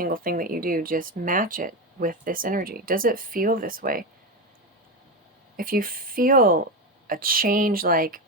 thing that you do, just match it with this energy. Does it feel this way? If you feel a change, like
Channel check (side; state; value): both; normal; correlation 0.15